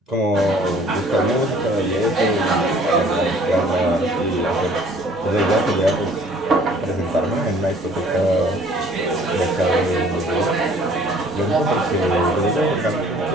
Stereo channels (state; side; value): normal; both; correlation 0.55